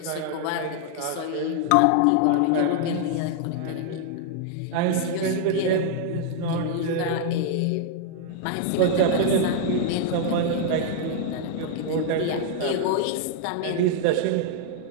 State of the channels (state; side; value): different; both; correlation -0.01